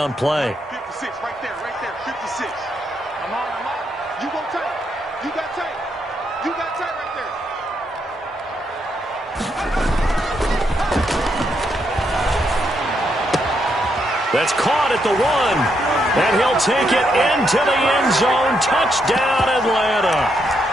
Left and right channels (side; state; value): both; normal; correlation 0.78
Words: play. 56, right there, 56. I'm on. You go tight. You got tight. You got tight right there. That's caught at the 1. And he'll take it into the end zone. Touchdown, Atlanta.